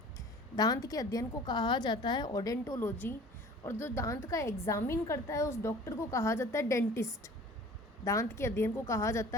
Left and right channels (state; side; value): normal; both; correlation 0.46